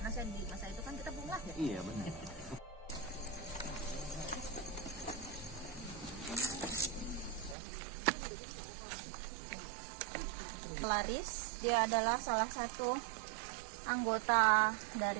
saya di masa itu kan kita belum lahir. Iya benar. Laris, dia adalah salah satu anggota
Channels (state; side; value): drops out; left; at 7.6 s